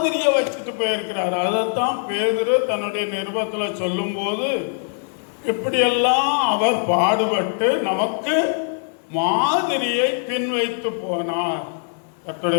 வச்சுட்டு போயிருக்கிறாரு. அதைத்தான் பேதுரு தன்னுடைய நிருபத்தில் சொல்லும் போது, இப்படியெல்லாம் அவர் பாடுபட்டு நமக்கு மாதிரியை பின் வைத்து போனார்.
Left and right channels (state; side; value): silent; right; 57 dB below the other